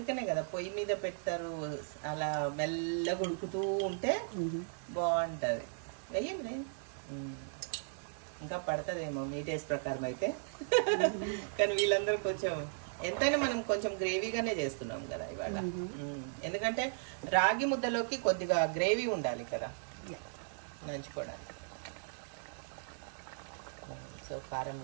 కదా పొయ్యి మీద పెడతారు, అలా మెల్లగా ఉడుకుతూ ఉంటే బాగుంటుంది. వెయ్యండి, ఇంకా పడుతుందేమో మీ టేస్ట్ ప్రకారం అయితే. కానీ వీళ్ళందరూ కొంచెం ఎంతైనా మనం కొంచెం గ్రేవీగానే చేస్తున్నాం కదా ఇవాళ. ఎందుకంటే రాగి ముద్దలోకి కొద్దిగా గ్రేవీ ఉండాలి కదా నంచుకోవడానికి. సో కారం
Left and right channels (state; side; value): silent; left; digital silence